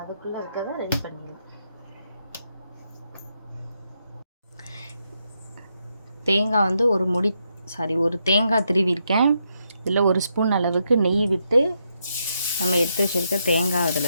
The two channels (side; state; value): both; inverted; correlation -0.80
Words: அதுக்குள்ளே இருக்கிறத ரெடி பண்ணிடலாம் தேங்காய் வந்து ஒரு தேங்காய் திருவிருக்கேன் இதில் 1 ஸ்பூன் அளவுக்கு நெய் விட்டு நம்ம எடுத்து வச்சுருக்க தேங்காய்